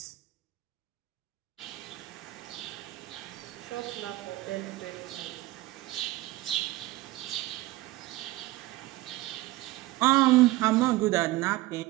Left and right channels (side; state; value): left; quieter; 18.4 dB